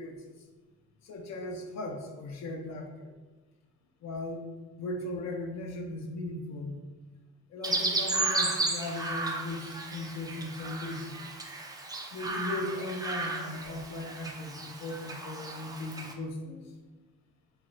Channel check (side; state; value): both; normal; correlation 0.16